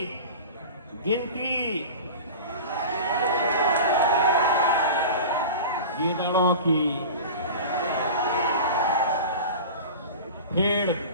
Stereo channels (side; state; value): both; inverted; correlation -0.33